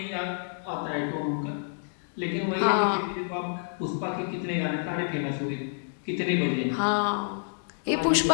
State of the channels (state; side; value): silent; right; digital silence